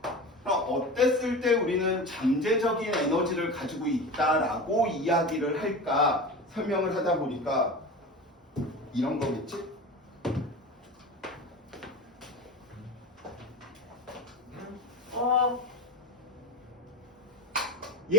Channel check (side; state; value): both; normal; correlation 0.29